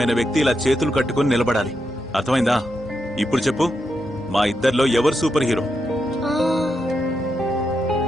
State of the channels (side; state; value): both; normal; correlation 0.84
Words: వ్యక్తి ఇలా చేతులు కట్టుకుని నిలబడాలి. అర్థమైందా? ఇప్పుడు చెప్పు, మా ఇద్దరిలో ఎవరు సూపర్ హీరో?